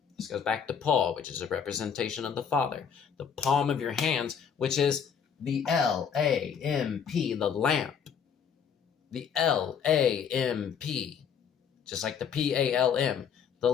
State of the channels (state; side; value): quieter; right; 7.2 dB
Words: This goes back to Paul, which is a representation of the father. The palm of your hands, which is the L-A-M-P, the lamp. The L-A-M-P, just like the P-A-L-M, the